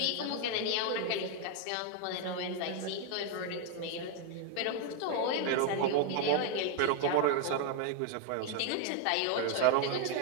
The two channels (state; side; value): different; both; correlation 0.00